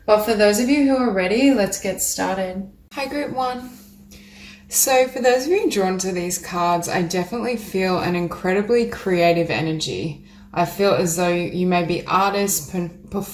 But for those of you who are ready, let's get started. Hi, Group 1. So for those of you drawn to these cards, I definitely feel an incredibly creative energy. I feel as though you may be artists,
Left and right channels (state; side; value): identical; both; correlation 1.00